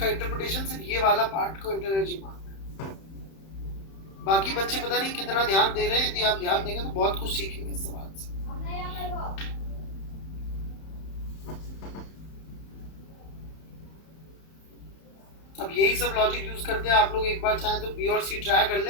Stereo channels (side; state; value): right; late; 31 ms